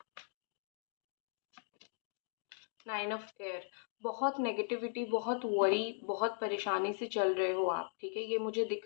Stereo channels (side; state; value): right; silent; 52 dB below the other